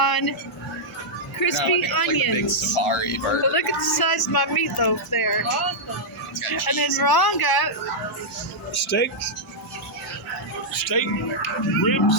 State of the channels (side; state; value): both; normal; correlation -0.07